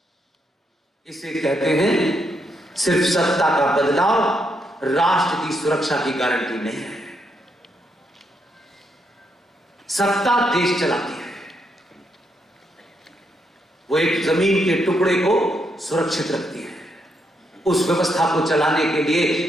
इसे कहते हैं सिर्फ सत्ता का बदलाव राष्ट्र की सुरक्षा की गारंटी नहीं है। सत्ता देश चलाती है, वो एक जमीन के टुकड़े को सुरक्षित रखती है। उस व्यवस्था को चलाने के लिए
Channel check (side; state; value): both; normal; correlation 0.78